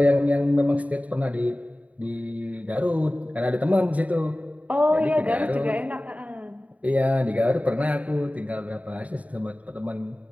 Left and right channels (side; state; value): left; late; 0.069 ms